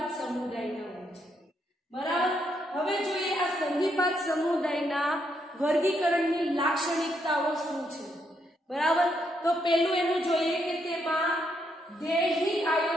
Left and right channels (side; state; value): both; normal; correlation 0.77